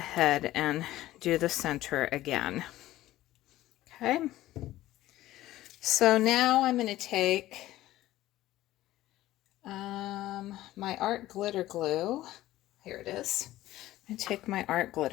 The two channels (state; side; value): quieter; right; 15.4 dB